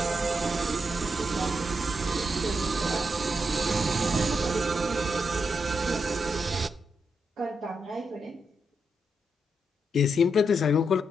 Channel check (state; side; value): normal; both; correlation 0.82